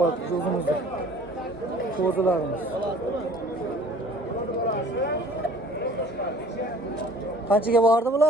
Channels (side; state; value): both; normal; correlation 0.50